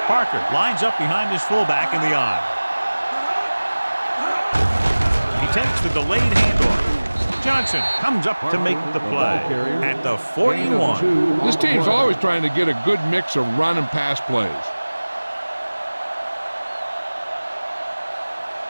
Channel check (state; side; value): inverted; both; correlation -1.00